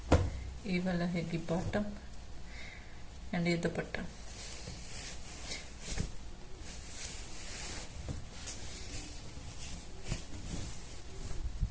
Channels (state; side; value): identical; both; correlation 1.00